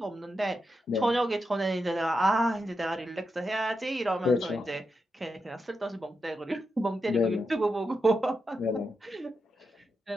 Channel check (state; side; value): normal; both; correlation 0.86